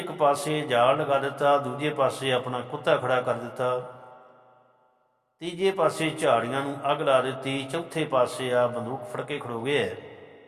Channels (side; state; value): both; identical; correlation 1.00